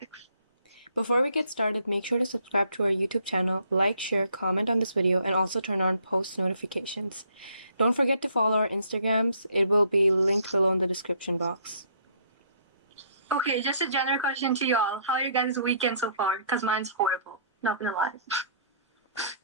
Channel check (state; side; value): inverted; both; correlation -0.63